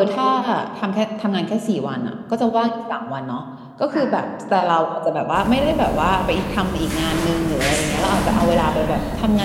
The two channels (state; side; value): identical; both; correlation 1.00